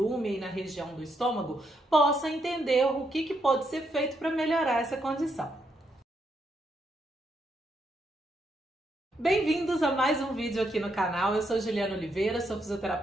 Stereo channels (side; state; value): both; normal; correlation 0.78